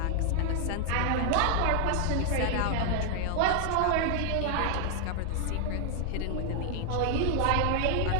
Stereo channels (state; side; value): different; both; correlation 0.00